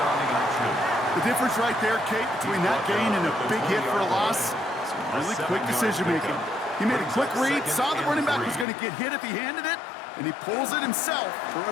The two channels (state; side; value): drops out; right; at 8.7 s